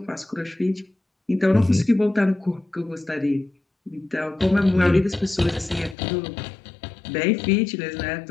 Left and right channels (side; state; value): right; drops out; at 6.0 s